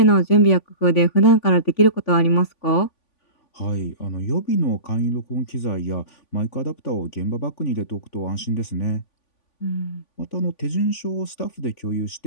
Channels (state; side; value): late; right; 3.5 ms